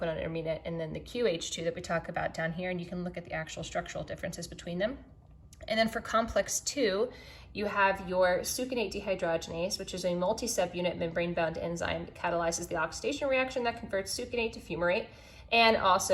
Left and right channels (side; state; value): both; identical; correlation 1.00